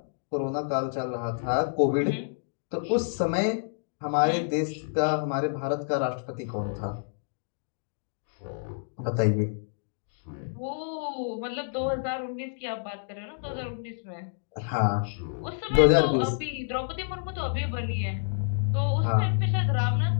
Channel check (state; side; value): silent; right; digital silence